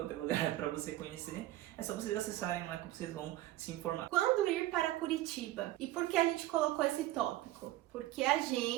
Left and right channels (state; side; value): quieter; left; 15.8 dB